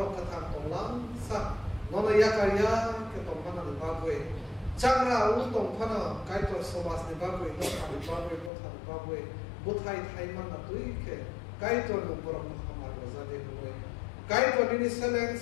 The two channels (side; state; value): right; drops out; at 8.5 s